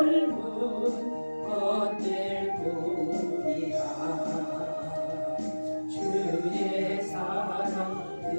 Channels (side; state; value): both; inverted; correlation -1.00